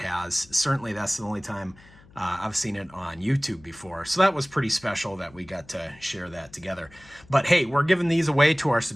Certainly that's the only time I've seen it on YouTube before. So that was pretty special that we got to share that together. But hey, we're giving these away to our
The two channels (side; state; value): left; noise; hum, 25 dB below the sound